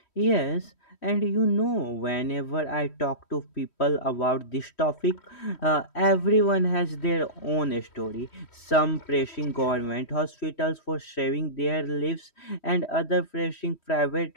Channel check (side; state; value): right; late; 3.1 ms